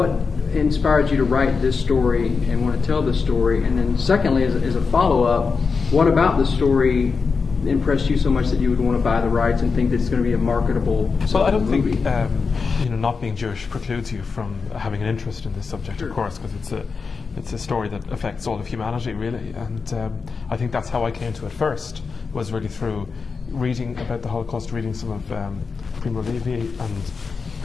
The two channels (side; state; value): right; quieter; 5.0 dB